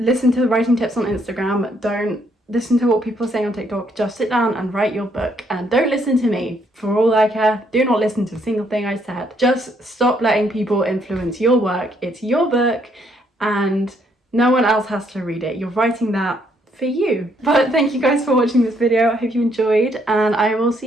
to the writing tips on Instagram. Don't listen to what people are saying on TikTok. Just sit down and write your book, and don't listen to me. For all I care, do not listen to a single thing I said. Just stop letting people influence your work. It's your book and no one else has to read it. You're writing that for you. But thank you guys for watching this video. I hope you enjoyed, and I will see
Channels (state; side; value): normal; both; correlation 0.70